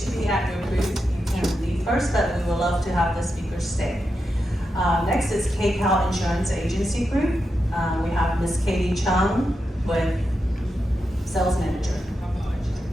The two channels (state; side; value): normal; both; correlation 0.87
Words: be at your booth, you can leave first, but we would love to have the speakers stay. Next is KCAL Insurance Agency Group. We have Ms. Katie Chung with Sales Manager.